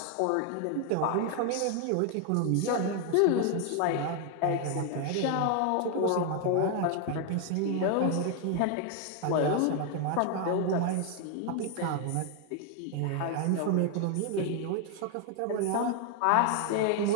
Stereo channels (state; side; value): different; both; correlation 0.00